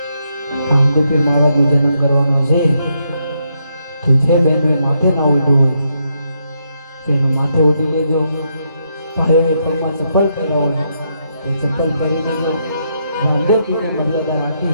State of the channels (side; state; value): both; inverted; correlation -0.79